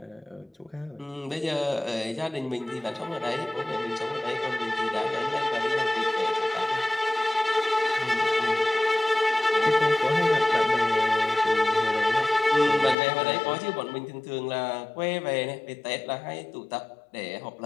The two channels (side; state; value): right; drops out; at 13.0 s